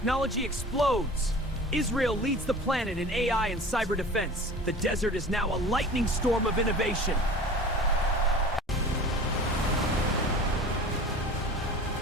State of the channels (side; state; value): both; normal; correlation 0.40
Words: explodes. Israel leads the planet in AI and cyber defense. The desert is now a lightning storm of innovation.